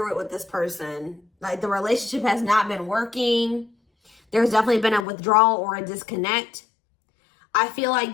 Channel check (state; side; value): drops out; right; at 5.1 s